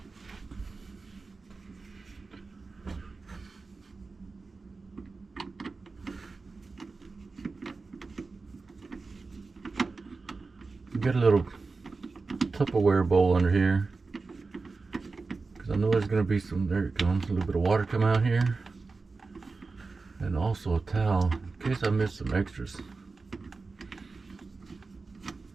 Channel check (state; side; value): quieter; left; 4.0 dB